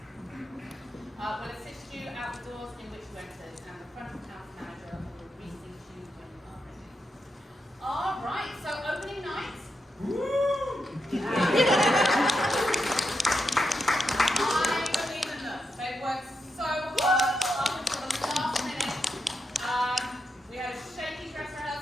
will assist you out the doors in which you entered, and the front of house manager will reseat you when you are ready. All right, so opening night. I believe in them. They've worked so hard up until the last minute. We had a shaky dress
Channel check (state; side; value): normal; both; correlation 0.85